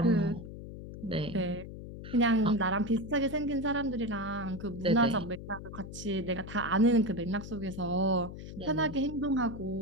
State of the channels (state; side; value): noise; left; hum, 11 dB below the sound